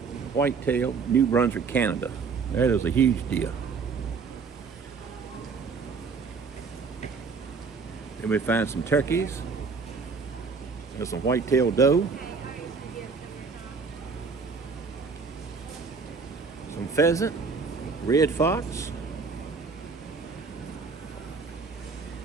New Brunswick, Canada. That is a huge deer. And we find some turkeys. There's some white-tailed doe. Some pheasant, red fox.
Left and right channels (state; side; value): quieter; left; 5.0 dB